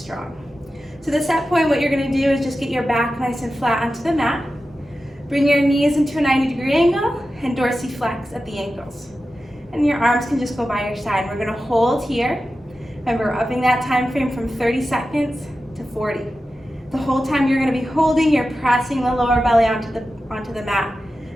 So the set point, what you're going to do is just get your back nice and flat onto the mat. Bring your knees into a 90-degree angle and dorsiflex at the ankles. And your arms can just go by your side. We're going to hold here. Remember, we're upping that time frame from 30 seconds to 40. The whole time you're going to be holding, you're pressing the lower belly onto the mat.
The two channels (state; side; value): normal; both; correlation 0.93